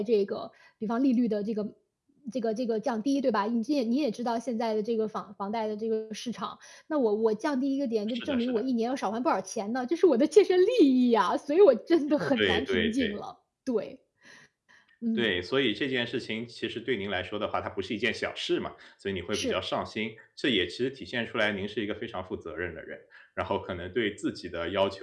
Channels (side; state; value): both; identical; correlation 1.00